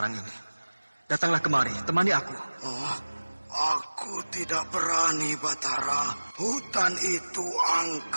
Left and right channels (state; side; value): inverted; both; correlation -1.00